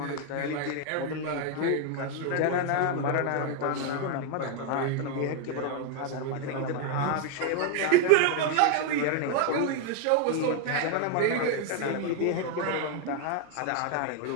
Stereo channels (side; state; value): both; different; correlation 0.01